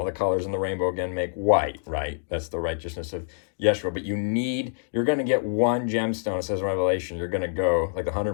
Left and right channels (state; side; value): silent; right; digital silence